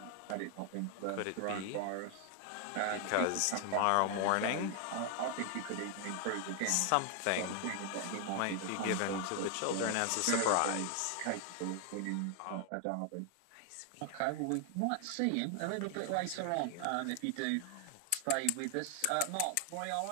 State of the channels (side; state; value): both; different; correlation 0.00